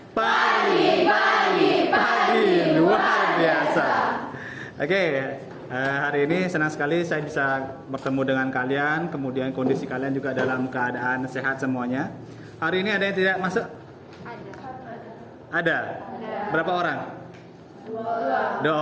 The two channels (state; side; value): identical; both; correlation 1.00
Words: Pagi luar biasa. Oke, hari ini senang sekali saya bisa bertemu dengan kalian. Kemudian kondisi kalian juga dalam keadaan sehat semuanya. Hari ini ada yang tidak masuk? Ada. Berapa orang? Dua